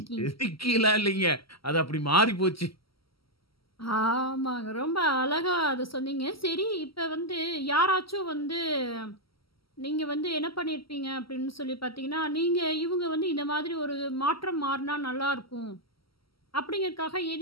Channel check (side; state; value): right; late; 0.75 ms